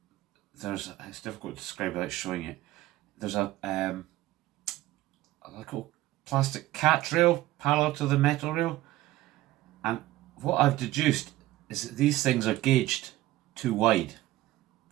it's difficult to describe without showing it. There's a little plastic catch rail parallel to the metal rail, and what I've deduced is that these things are gauged too wide.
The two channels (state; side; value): quieter; left; 16.4 dB